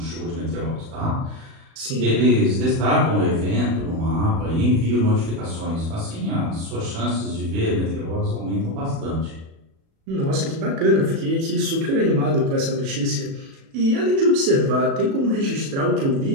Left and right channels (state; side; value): late; left; 36 ms